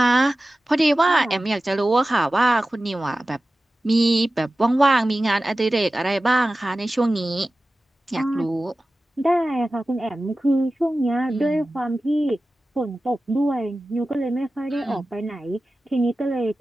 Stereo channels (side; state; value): both; normal; correlation 0.95